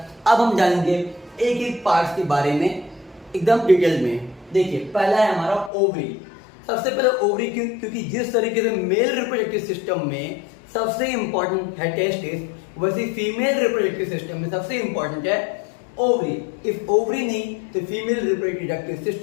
अब हम जानेंगे एक एक पार्ट्स के बारे में एकदम डिटेल में। देखिए पहला है हमारा ओवरी। सबसे पहले ओवरी क्यों? क्योंकि जिस तरीके से मेल रिप्रोडक्टिव सिस्टम में सबसे इंपॉर्टेंट है टेस्टिस, वैसे फीमेल रिप्रोडक्टिव सिस्टम में सबसे इंपॉर्टेंट है ओवरी। इफ ओवरी नहीं तो फीमेल रिप्रोडक्टिव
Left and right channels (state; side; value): drops out; right; at 5.7 s